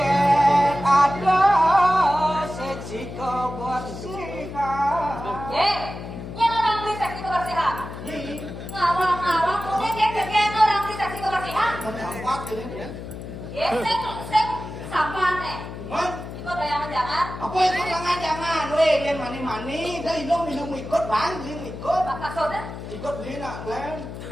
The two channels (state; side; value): noise; left; hum, 10 dB below the sound